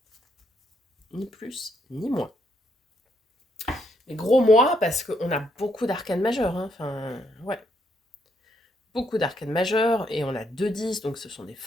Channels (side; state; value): both; normal; correlation 0.75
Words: Ni plus, ni moins. Mais gros mois, parce qu'on a beaucoup d'arcanes majeures. Hein. Enfin, ouais. Beaucoup d'arcanes majeures, et on a 2-10, donc ce sont des